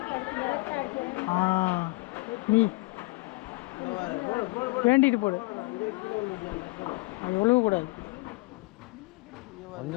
நீ வேண்டிட்டு போடு. அது ஒழுகக்கூடாது,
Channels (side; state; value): right; quieter; 24.5 dB